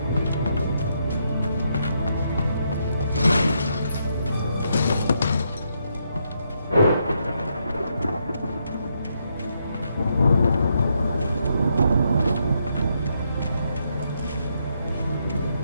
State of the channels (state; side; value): inverted; both; correlation -0.77